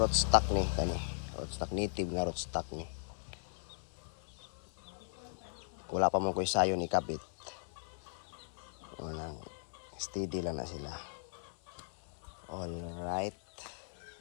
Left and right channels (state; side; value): silent; right; 52 dB below the other